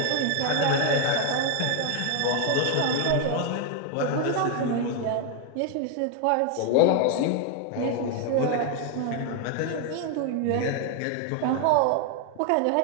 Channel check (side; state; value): both; different; correlation 0.01